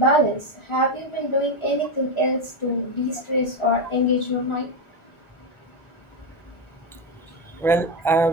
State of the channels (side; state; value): both; normal; correlation 0.10